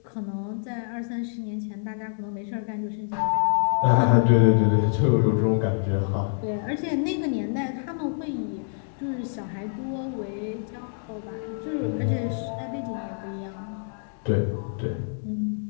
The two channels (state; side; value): silent; right; digital silence